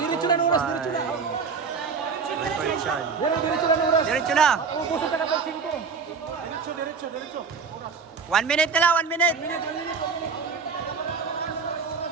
na oras, diretso na. Diretso na oras. Diretso na. Ubusan ka na pa 5. 1 minute na lang, 1 minute.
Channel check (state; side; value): quieter; left; 5.3 dB